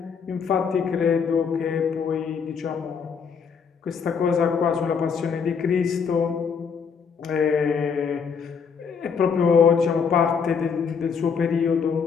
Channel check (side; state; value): right; quieter; 6.2 dB